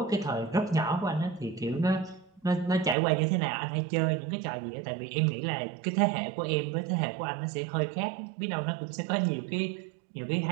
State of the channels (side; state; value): left; drops out; at 3.0 s